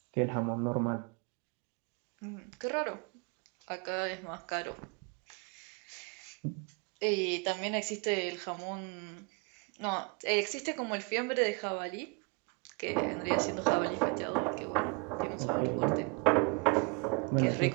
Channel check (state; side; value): quieter; left; 30.5 dB